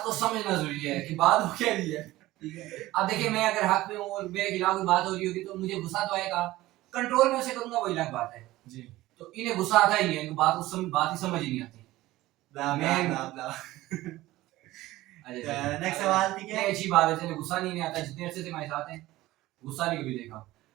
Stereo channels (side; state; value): left; quieter; 17.1 dB